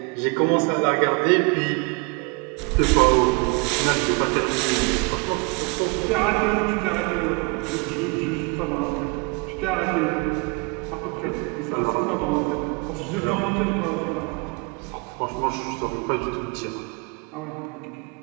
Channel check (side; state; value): left; quieter; 31.4 dB